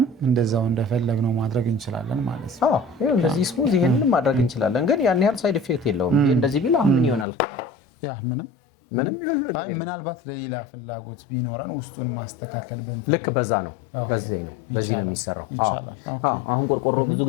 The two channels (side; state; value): right; drops out; at 7.2 s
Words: እንደዛው እንደፈለግነው ማድረግ እንችላለን ማለት ነው። አዎ እንደዚህ ስሙዝ ይሄንን ማድረግ እንችላለን። ግን ያን ያህል ሳይድ ኢፌክት የለውም። እንደዚህ ቢል ምን ይሆናል? ያ ምንም ምናልባት ለሌላ ፍላጎት ቢኖረን ውስጡን ማስተካከል ብንፈልግ ልክ በዛ ነው። በዚህ ነው የሚሰራው። ይቻላል። አሁን ቆርቆሮ ብዙ